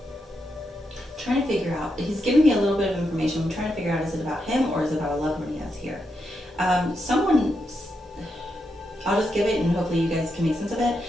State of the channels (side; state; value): both; normal; correlation 0.83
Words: Trying to figure out, he's giving me a little bit of information. I'm trying to figure out, is it about him or is it about a loved one he has here? I'll just give it and hopefully you guys can make sense of it.